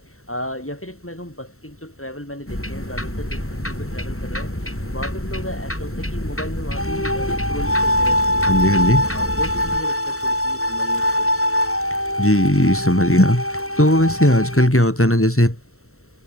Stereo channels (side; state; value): right; late; 0.63 ms